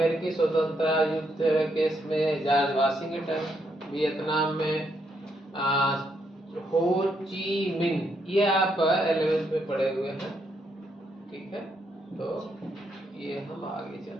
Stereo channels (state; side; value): normal; both; correlation 0.76